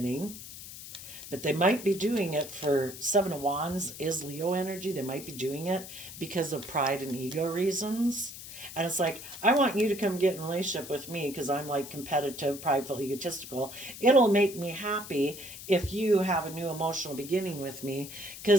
but they might be doing it for Seven of Wands is Leo energy. They might be doing it because of pride and ego reasons. And it's like, I want you to come get in a relationship with me because I'm like competitive, prideful, egotistical. It'll make me happy if you have a new emotional beginning with me,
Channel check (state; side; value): noise; left; hiss, 13 dB below the sound